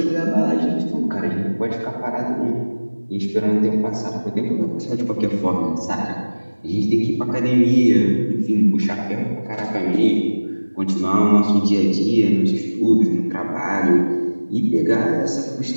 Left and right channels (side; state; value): both; inverted; correlation -1.00